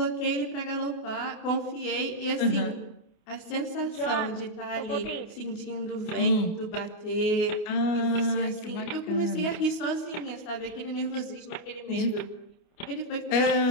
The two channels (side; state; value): right; late; 29 ms